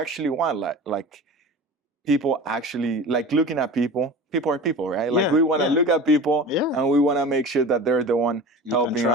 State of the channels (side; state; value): both; normal; correlation 0.35